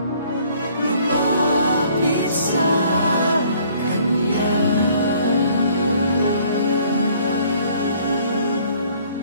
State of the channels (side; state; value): both; inverted; correlation -0.59